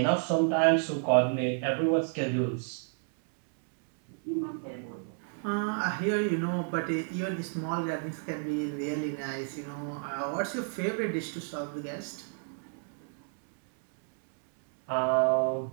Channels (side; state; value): left; silent; 57 dB below the other